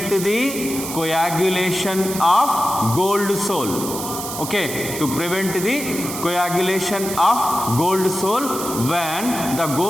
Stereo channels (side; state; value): right; noise; hiss, 7 dB below the sound